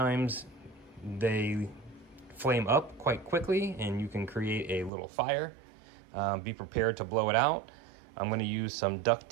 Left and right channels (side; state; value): left; drops out; at 4.9 s